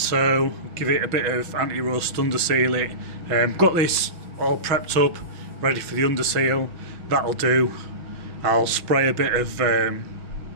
give it a bit of anti-rust, underseal it. Got this all prepped up, ready for the underseal. That'll do. I'll spray a bit of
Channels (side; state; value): left; late; 6.2 ms